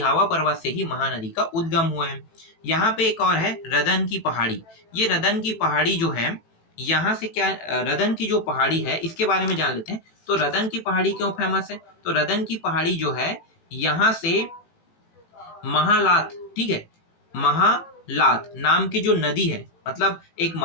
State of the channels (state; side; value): late; right; 18 ms